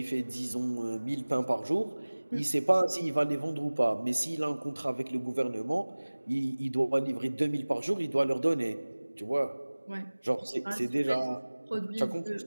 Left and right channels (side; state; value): both; inverted; correlation -1.00